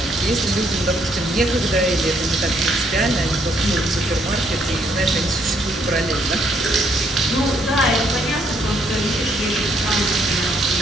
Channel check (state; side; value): normal; both; correlation 0.70